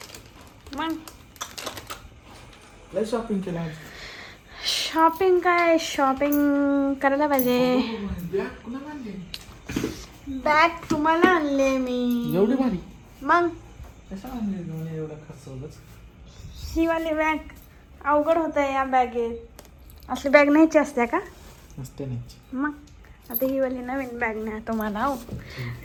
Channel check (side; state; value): both; identical; correlation 1.00